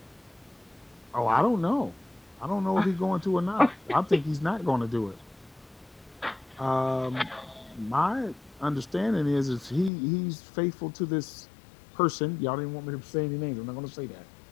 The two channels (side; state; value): right; drops out; at 9.9 s